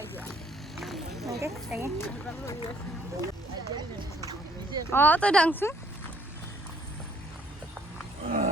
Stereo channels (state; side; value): normal; both; correlation 0.62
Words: অঁ তই ডাংচোন।